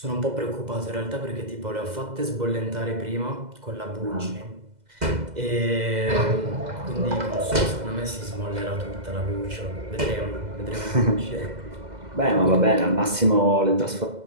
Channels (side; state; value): left; late; 2.0 ms